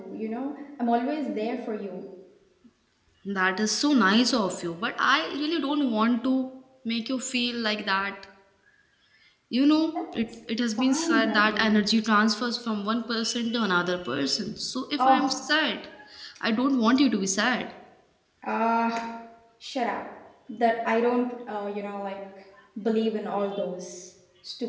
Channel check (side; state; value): both; identical; correlation 1.00